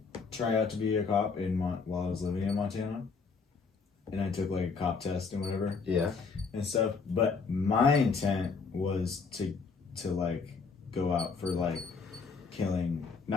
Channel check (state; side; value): quieter; right; 4.9 dB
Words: try out to be a cop while I was living in Montana, and I took like a cop test and whatever. yeah, And stuff. But my intent was to like go out for like